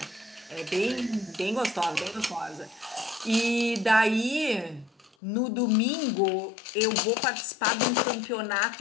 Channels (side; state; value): right; drops out; at 5.1 s